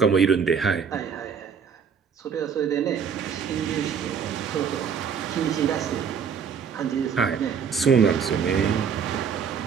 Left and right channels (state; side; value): quieter; left; 6.8 dB